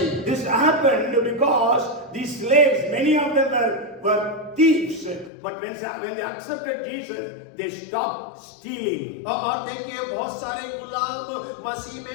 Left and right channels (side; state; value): right; drops out; at 5.3 s